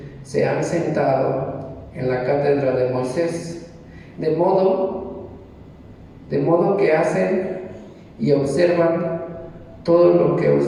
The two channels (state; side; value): identical; both; correlation 1.00